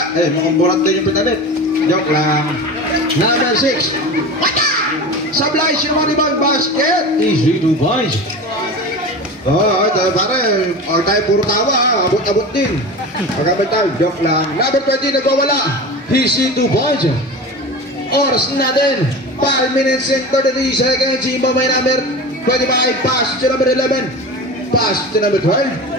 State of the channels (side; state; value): both; normal; correlation 0.31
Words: Mukhang burat din yung pinalit. Joke lang. Number 6. Sablay, sino man ibang basket? Easy to boys. Pare, tayo puro tawa. Abot-abot din. Pagkabay tayo, joke lang. Number 20, nagwawala. Easy to boys. Oras natin. 5 minutes and 33 seconds. Iba may number 25. Pass to number 11. Pass to number